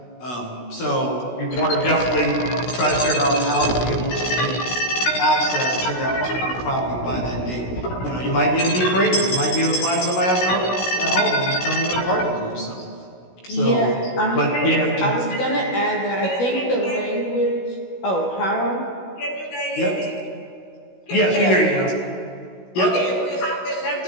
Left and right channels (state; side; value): late; right; 16 ms